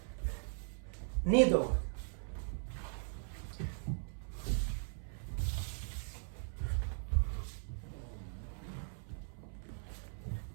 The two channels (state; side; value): silent; left; 52 dB below the other